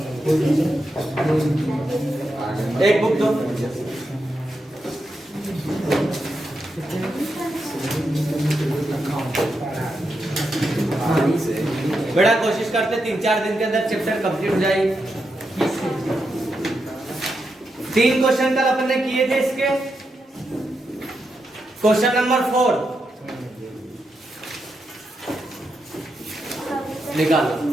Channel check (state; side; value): normal; both; correlation 0.85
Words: एक बुक दो। बेटा कोशिश करते 3-4 दिन के अंदर चैप्टर कंप्लीट हो जाए। 3 क्वेश्चन कल अपन ने किए थे इसके। क्वेश्चन नंबर 4 निकालो।